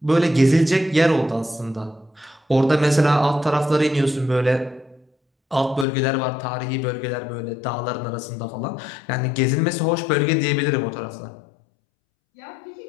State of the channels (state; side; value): drops out; right; at 5.9 s